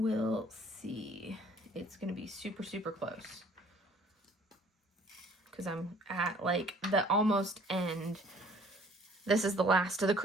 see. It's going to be super, super close, because I'm at like the almost end. This is the last of the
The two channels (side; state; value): both; normal; correlation 0.56